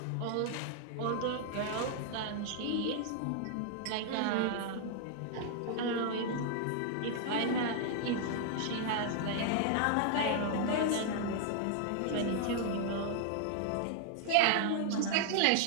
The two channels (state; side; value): different; both; correlation 0.00